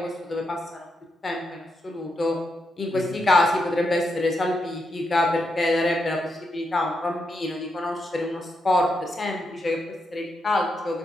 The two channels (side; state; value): both; normal; correlation 0.83